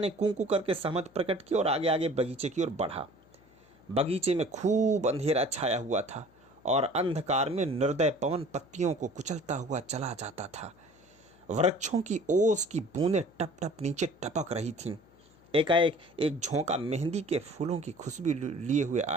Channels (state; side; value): noise; left; hum, 30 dB below the sound